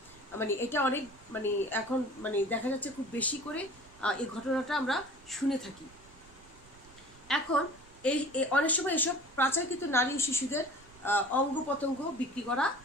এটা অনেক এখন দেখা যাচ্ছে খুব বেশি করে এই ঘটনাটা আমরা শুনে থাকি। এখন এই অনেক সময় এসব পাচারকৃত নারী ও শিশুদের অঙ্গ প্রত্যঙ্গ বিক্রি করা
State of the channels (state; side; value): noise; right; rumble, 24 dB below the sound